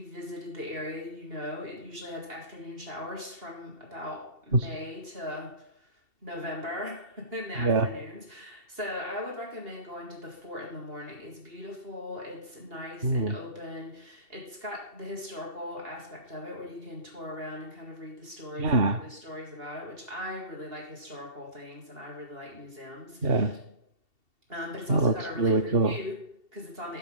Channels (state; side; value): late; left; 2.7 ms